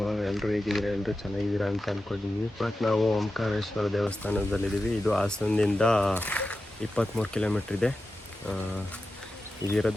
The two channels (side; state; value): both; normal; correlation 0.92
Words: ಎಲ್ಲರೂ ಹೇಗಿದ್ದೀರಾ? ಎಲ್ಲರೂ ಚೆನ್ನಾಗಿದ್ದೀರಾ ಅಂತ ಅಂದ್ಕೊಂಡಿದ್ದೀವಿ. ಬಟ್ ನಾವು ಓಂಕಾರೇಶ್ವರ ದೇವಸ್ಥಾನದಲ್ಲಿದ್ದೀವಿ. ಇದು ಹಾಸನದಿಂದ 23 ಕಿಲೋಮೀಟ್ರ್ ಇದೆ.